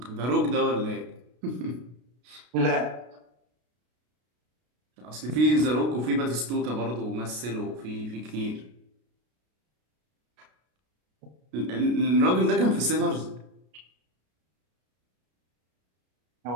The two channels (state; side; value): late; left; 33 ms